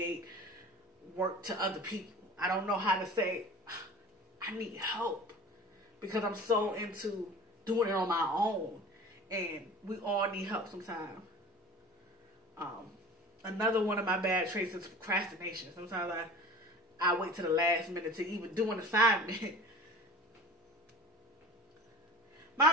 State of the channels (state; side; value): normal; both; correlation 0.40